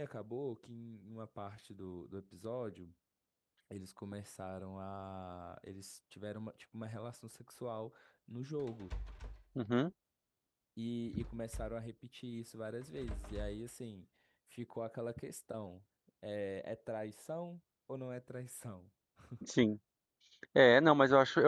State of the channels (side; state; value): both; identical; correlation 1.00